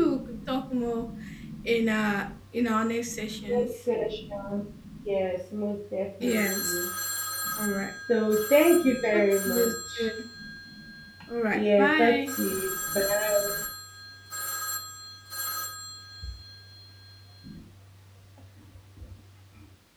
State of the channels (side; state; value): both; identical; correlation 1.00